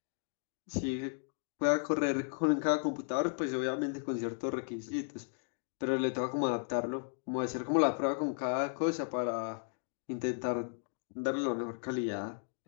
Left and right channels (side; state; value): right; silent; digital silence